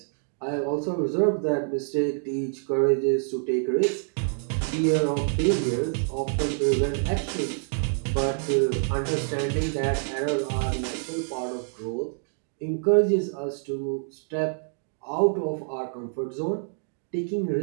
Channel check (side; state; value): left; silent; 59 dB below the other